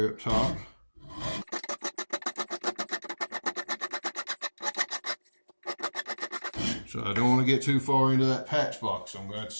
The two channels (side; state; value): both; inverted; correlation -1.00